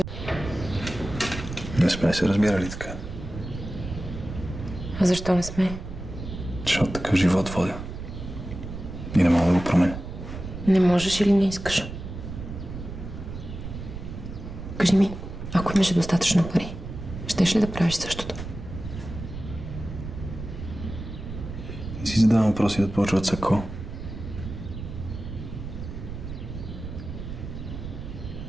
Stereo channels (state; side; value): noise; right; rumble, 9 dB below the sound